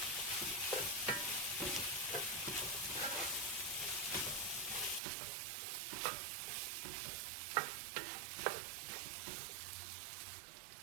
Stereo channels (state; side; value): drops out; left; at 5.0 s